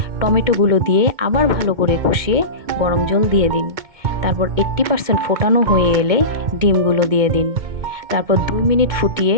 টমেটোগুলো দিয়ে আবার ভালো করে কষিয়ে গরম জল দিয়ে দিন। তারপর 80% ফোটানো হয়ে এলে ডিমগুলো দিয়ে দিন। তারপর 2 মিনিট ফুটিয়ে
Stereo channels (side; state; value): left; late; 2.2 ms